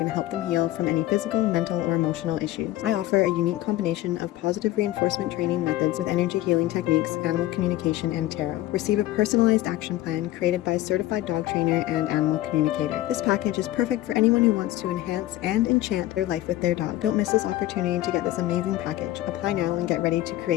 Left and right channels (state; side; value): quieter; right; 15.5 dB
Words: help them heal from any physical, mental, or emotional issues. I offer a unique combination of positive reinforcement training methods with energy healing techniques, animal communication, and tarot. Receive a personalized action plan created by a certified dog trainer and animal communicator. This package is perfect for anyone who wants to enhance and enchant their life with their dog. Don't miss this opportunity to get this amazing package. Apply now and get ready to